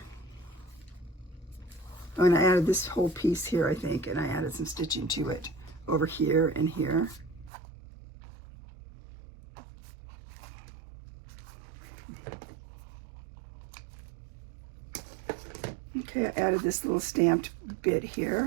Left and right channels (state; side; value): drops out; left; at 7.5 s